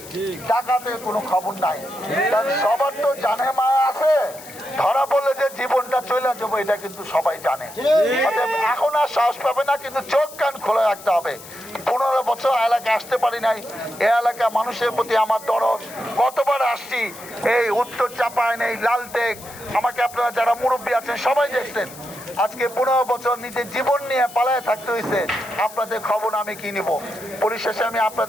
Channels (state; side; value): noise; left; hiss, 17 dB below the sound